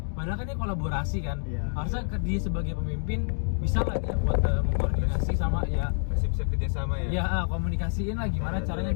Padahal kan dia kolaborasi kan. Iya. Harusnya dia sebagai pemimpin bisa lah dia buat mengkoordinasi sama ya. Masih bisa kerjasama ya. Ya komunikasiin lah gimana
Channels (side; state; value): right; silent; 60 dB below the other